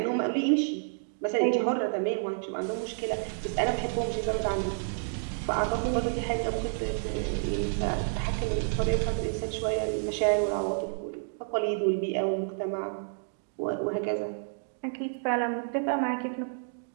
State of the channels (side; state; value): left; silent; digital silence